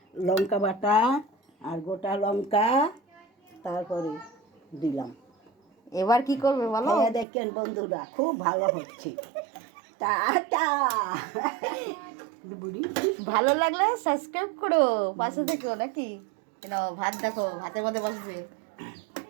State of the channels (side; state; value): left; drops out; at 7.2 s